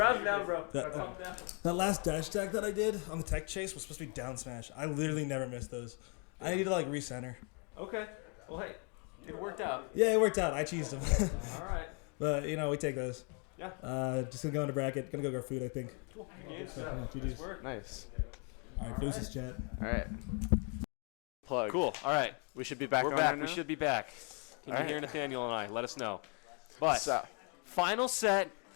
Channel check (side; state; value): right; quieter; 36.8 dB